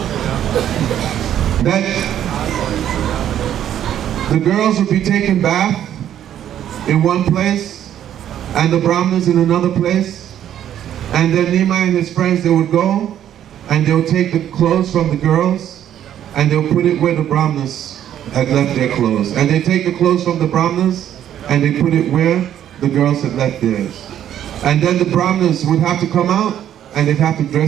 That the girls would be taking bath in one place and the Brahmanas in another place, and then Nimai and his friends, they would go and they would take the clothes from the girls and they would put it where the Brahmanas had left their clothes, and they take the clothes from the Brahmanas and they put it where the girls had left theirs. And then the Brahmanas would have to come out and they'd have to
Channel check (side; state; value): left; quieter; 10.7 dB